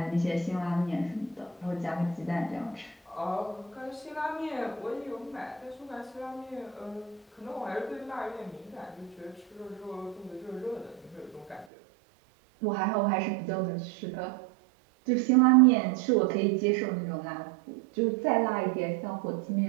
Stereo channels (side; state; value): left; drops out; at 11.7 s